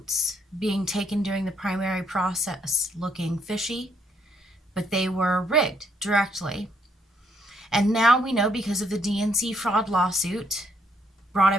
being taken during the primary process looking fishy, but they were rigged directly. And now we know, because of the DNC fraud lawsuit brought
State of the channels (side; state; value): both; normal; correlation 0.71